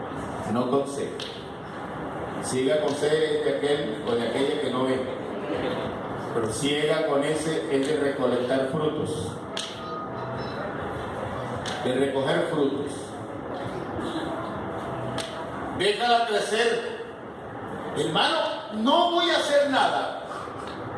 no con C. Siega con C es de aquel o de aquella que no ve. Pero siega con S es de recolectar frutos, de recoger frutos. Déjala crecer. Hermano, no voy a hacer nada.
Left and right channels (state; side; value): identical; both; correlation 1.00